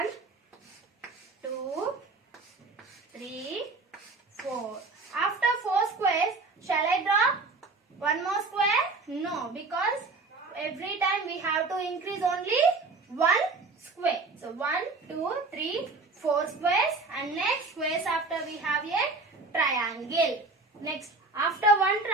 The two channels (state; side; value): quieter; left; 3.7 dB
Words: 2, 3, 4. After 4 squares, shall I draw one more square? No, because every time we have to increase only 1 square. So 1, 2, 3, 4 squares and next squares after we have a triangle. Next, after 1